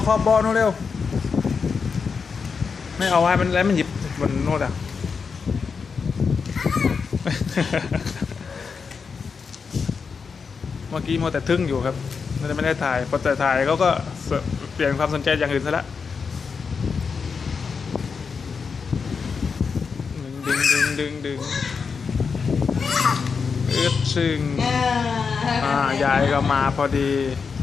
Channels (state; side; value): quieter; right; 5.5 dB